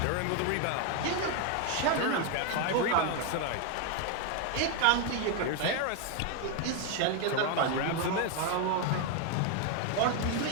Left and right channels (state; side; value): different; both; correlation 0.01